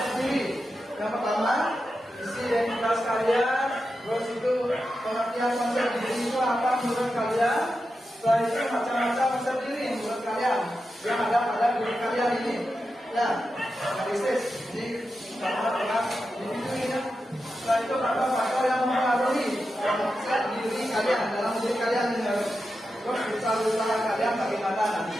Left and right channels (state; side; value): normal; both; correlation 0.90